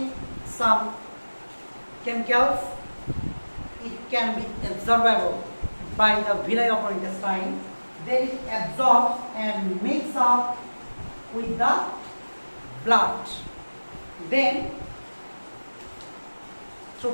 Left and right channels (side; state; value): both; inverted; correlation -1.00